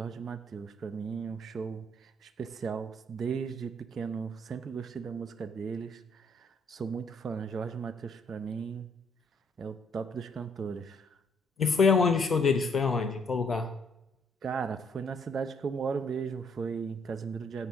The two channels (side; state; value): both; normal; correlation 0.67